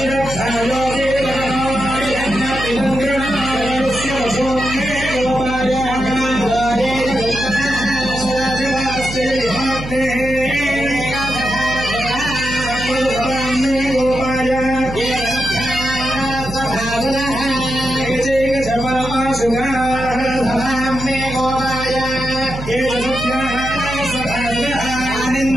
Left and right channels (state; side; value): noise; right; hum, 10 dB below the sound